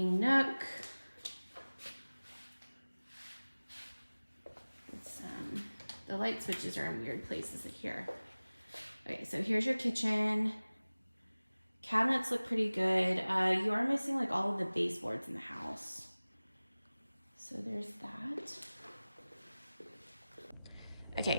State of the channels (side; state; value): both; inverted; correlation -0.99